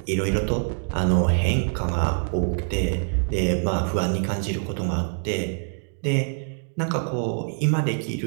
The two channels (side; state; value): left; silent; 58 dB below the other